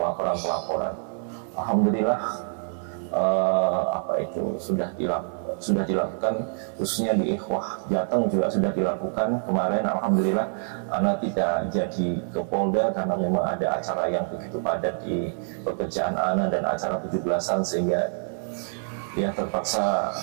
Alhamdulillah sudah dilakukan, khususnya di Ikhwah Jateng juga sudah dilakukan kemarin. Alhamdulillah Ana tidak jadi ke Polda karena memang ada acara yang begitu padat di pekerjaan Ana dan acara 17-an, sehingga ya terpaksa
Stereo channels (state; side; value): silent; left; 56 dB below the other